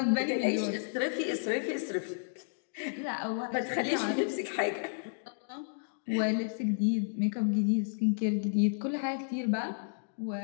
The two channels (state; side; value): silent; right; digital silence